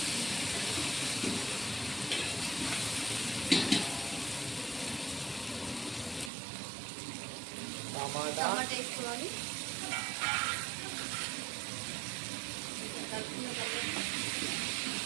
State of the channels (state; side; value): drops out; left; at 6.3 s